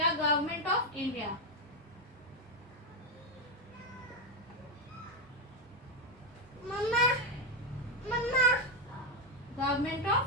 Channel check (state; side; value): normal; both; correlation 0.06